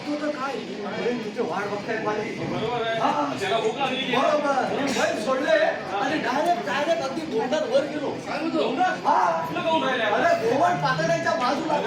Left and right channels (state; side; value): identical; both; correlation 1.00